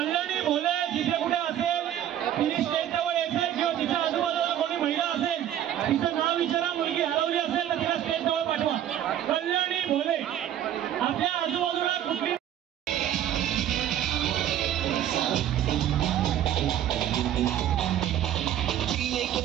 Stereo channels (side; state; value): left; quieter; 11.1 dB